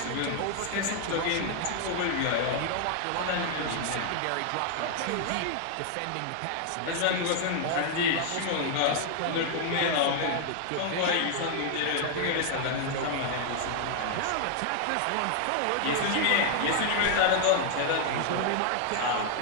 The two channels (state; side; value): different; both; correlation 0.00